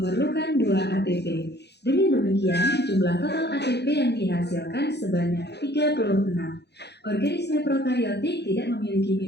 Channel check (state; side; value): late; right; 0.49 ms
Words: 2 ATP. Dengan demikian, jumlah total ATP yang dihasilkan sebanyak 36. Organisme prokariotik tidak memiliki